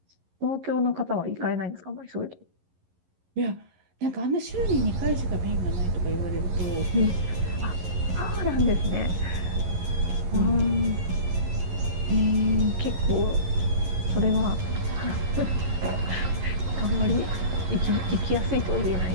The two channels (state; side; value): late; left; 11 ms